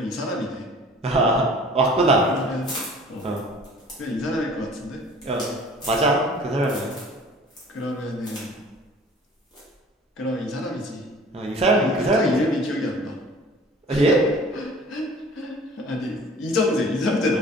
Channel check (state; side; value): normal; both; correlation 0.48